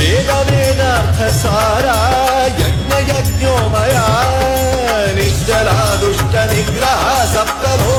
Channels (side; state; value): both; identical; correlation 1.00